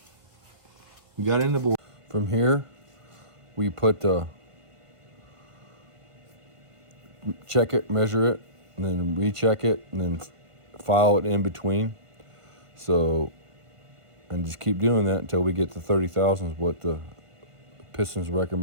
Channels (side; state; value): left; late; 1.5 ms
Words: We got it in the bore. From here, we put the check it, measure it, and then recheck it, and then file it in between. So, and just keep doing that until we get to 30 thousandths, what the pistons